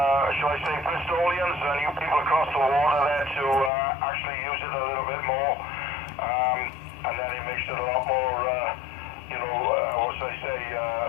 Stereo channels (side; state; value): right; drops out; at 3.7 s